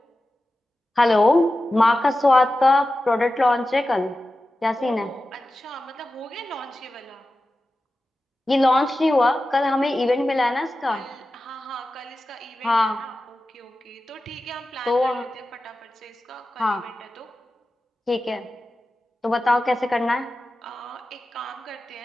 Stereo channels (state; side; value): normal; both; correlation 0.94